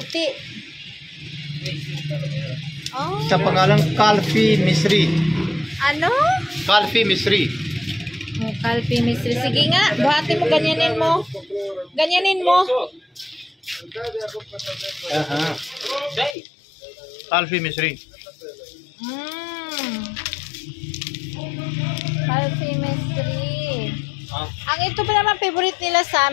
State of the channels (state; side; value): drops out; right; at 16.4 s